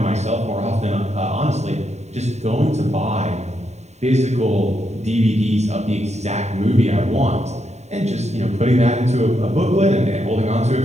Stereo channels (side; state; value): left; late; 0.32 ms